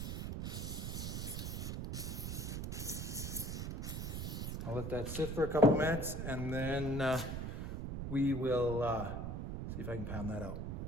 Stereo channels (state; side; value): noise; right; rumble, 3 dB below the sound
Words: I'll let that sit for a couple minutes, and then we will see if I can pound that out.